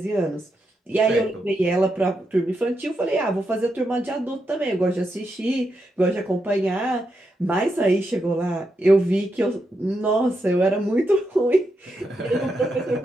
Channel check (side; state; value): both; normal; correlation 0.84